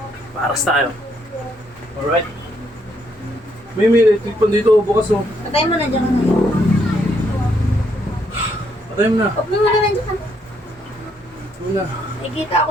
Baras tayo. Alright. May electric pan dito. Bukas oh. Patay mo na dyan. Patay mo na. Huwag mo na dyan. Muna. Nakikita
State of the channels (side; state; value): both; normal; correlation 0.73